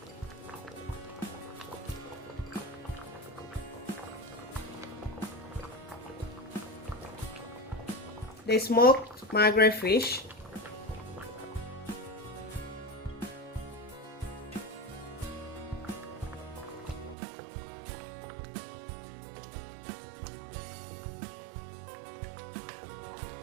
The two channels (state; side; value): drops out; left; at 17.2 s